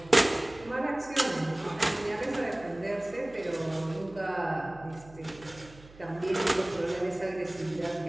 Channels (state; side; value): noise; right; hum, 21 dB below the sound